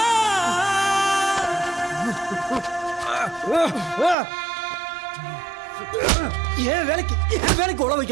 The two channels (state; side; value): drops out; left; at 4.2 s